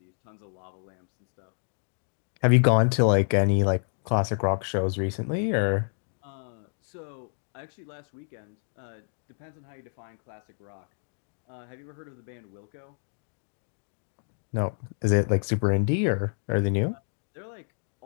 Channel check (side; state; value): right; silent; 59 dB below the other